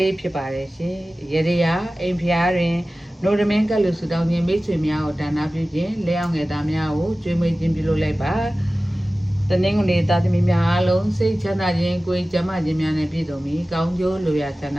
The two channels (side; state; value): both; normal; correlation 0.96